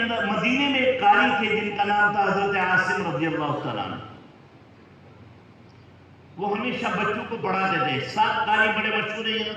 مدینے میں ایک قاری تھے جن کا نام تھا حضرت عاصم رضی اللہ تعالیٰ عنہ۔ وہ ہمیشہ بچوں کو پڑھاتے تھے۔ 7 قاری بڑے مشہور ہیں،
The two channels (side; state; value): both; identical; correlation 1.00